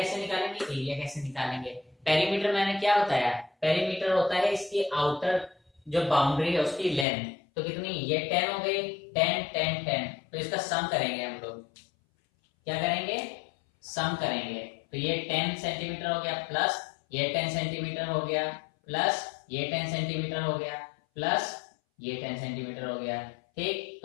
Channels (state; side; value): drops out; right; at 7.1 s